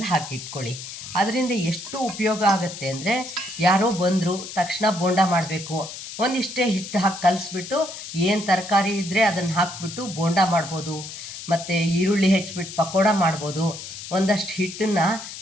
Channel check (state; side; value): noise; left; hiss, 11 dB below the sound